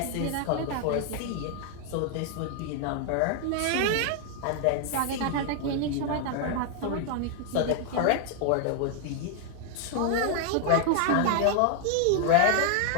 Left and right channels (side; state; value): both; different; correlation 0.00